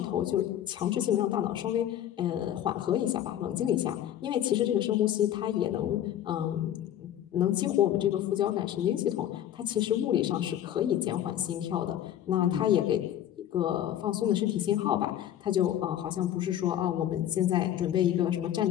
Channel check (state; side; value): quieter; right; 11.3 dB